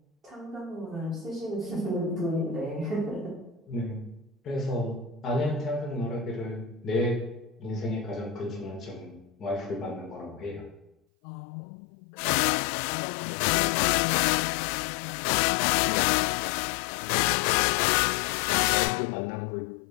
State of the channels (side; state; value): right; drops out; at 11.0 s